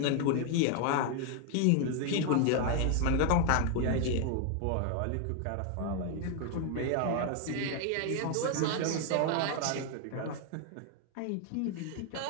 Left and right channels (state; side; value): different; both; correlation 0.00